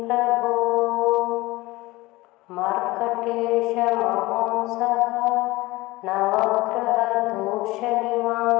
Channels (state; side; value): quieter; right; 20.2 dB